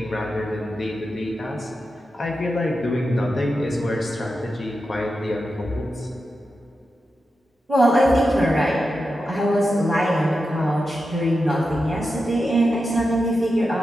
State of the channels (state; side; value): normal; both; correlation 0.90